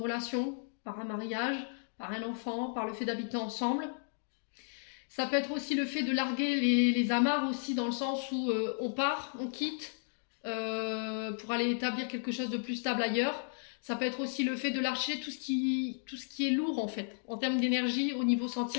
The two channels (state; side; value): silent; right; digital silence